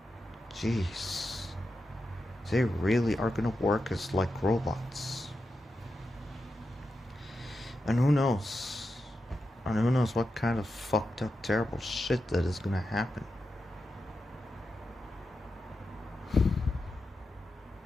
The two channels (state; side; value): normal; both; correlation 0.89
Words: jeez, they really are gonna work as like robots. And who knows? And who knows what kind of fucked up, terrible shit that is gonna happen.